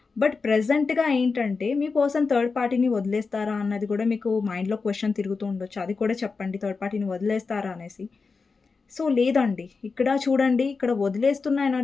బట్ ప్రెజెంట్‌గా ఏంటంటే, మీ పర్సన్ థర్డ్ పార్టీని వదిలేస్తారా అన్నది కూడా మీకు మైండ్‌లో క్వెషన్ తిరుగుతూ ఉండొచ్చు. అది కూడా చెప్పండి థర్డ్ పార్టీని వదిలేస్తారా అనేసి. సో, లేదండి. ఇక్కడ చూడండి, ఇక్కడ వదిలేస్తున్న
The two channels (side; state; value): right; quieter; 4.6 dB